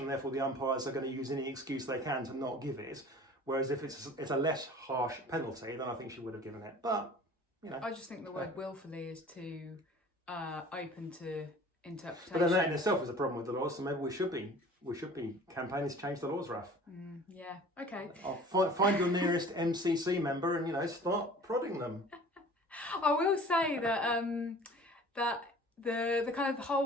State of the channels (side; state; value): both; normal; correlation 0.46